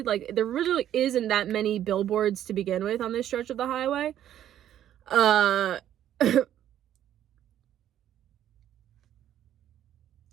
Like there really isn't that many billboards to begin with on this stretch of the highway. I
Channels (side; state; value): left; quieter; 11.2 dB